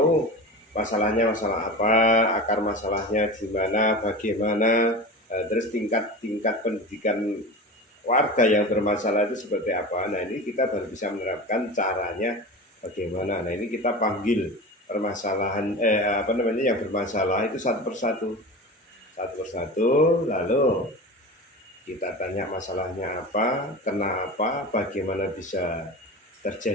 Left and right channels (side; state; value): both; normal; correlation 0.30